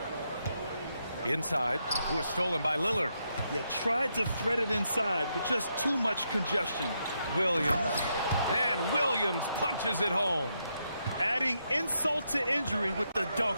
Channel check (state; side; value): inverted; both; correlation -0.80